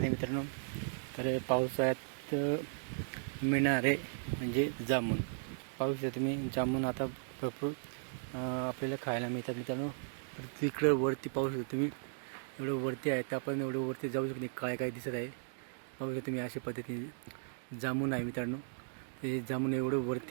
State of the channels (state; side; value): silent; left; digital silence